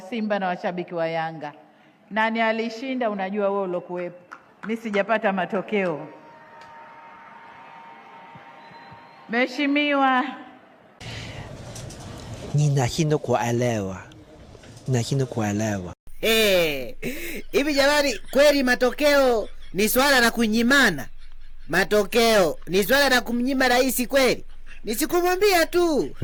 Simba na washabiki wa Yanga, nani alishinda? Unajua wewe ulokuwepo. Mimi sijapata matokeo. Mheshimiwa, ninashindwa kuelewa. Hivi jamani, kweli matokeo ni swala la kunyimana? Matokeo ni swala la kumnyima rais kweli? Nisikumwambia tu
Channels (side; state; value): both; identical; correlation 1.00